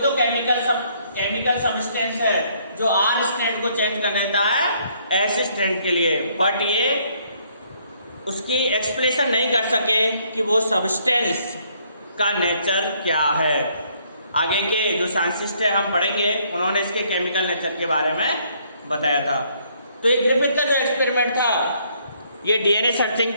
केमिकल सबस्टेंस है जो R स्ट्रैंड को चेंज कर देता है S स्ट्रैंड के लिए, बट ये उसकी एक्सप्लेनेशन नहीं कर सके कि वो सबस्टेंस का नेचर क्या है। आगे के जो साइंटिस्ट है हम पढ़ेंगे, उन्होंने इसके केमिकल नेचर के बारे में बताया था। तो ये ग्रिफिथ का जो एक्सपेरिमेंट था, ये DNA सर्चिंग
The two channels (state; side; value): inverted; both; correlation -0.66